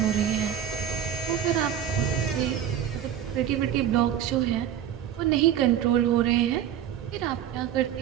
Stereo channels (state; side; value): quieter; left; 10.0 dB